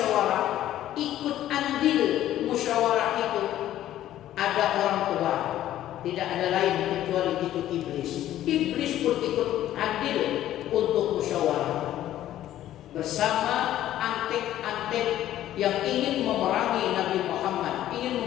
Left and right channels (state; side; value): quieter; right; 12.8 dB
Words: ikut andil musyawarah itu ada orang tua, tidak ada lain kecuali itu iblis. Iblis pun ikut andil untuk musyawarah bersama antek-antek yang ingin memerangi Nabi Muhammad, ingin